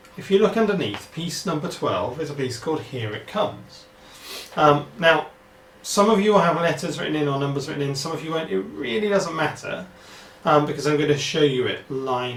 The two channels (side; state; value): both; identical; correlation 1.00